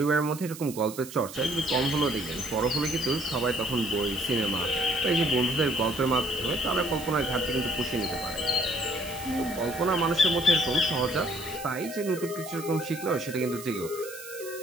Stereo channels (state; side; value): noise; right; hiss, 14 dB below the sound